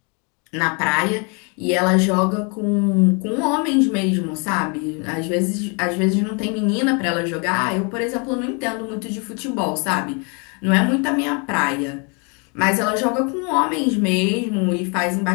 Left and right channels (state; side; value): quieter; right; 34.2 dB